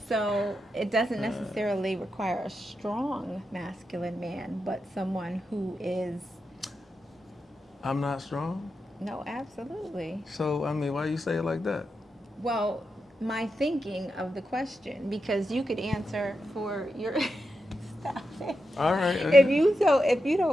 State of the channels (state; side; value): normal; both; correlation 0.87